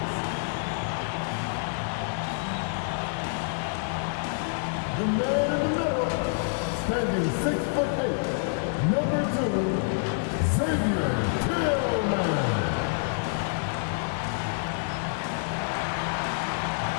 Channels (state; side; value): silent; right; digital silence